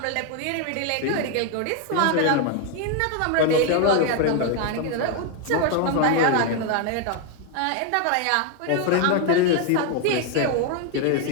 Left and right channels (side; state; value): both; different; correlation 0.01